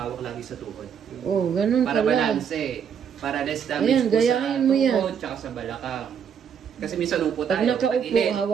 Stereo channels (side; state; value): left; quieter; 7.6 dB